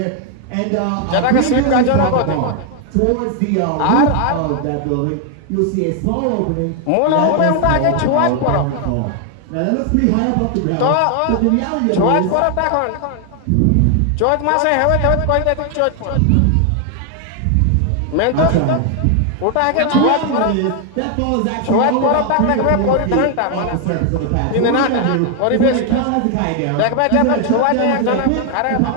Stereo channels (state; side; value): different; both; correlation 0.00